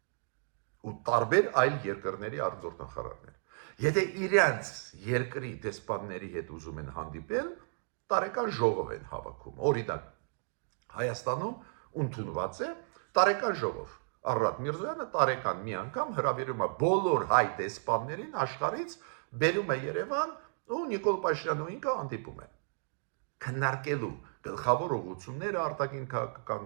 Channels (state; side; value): silent; left; digital silence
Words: Ու տարբեր այլ երկրների արտգործնախարարներ։ Եթե իրենց երկրի դեսպանների հետ ուզում են հանդիպել, տարեկան ժողով են հավաքում։ Օրինակ, Հայաստանում ընդունված է տարեկան ժողով։ Արարատ Միրզոյանը տարեկան մի անգամ հրավիրում է բոլոր հայ դեսպաններին աշխարհից, բերում է Երևան ու Նիկոլ Փաշինյանն ու ինքը հանդիպում են։ Քննարկելու գլխավոր ուղղությունները արտաքին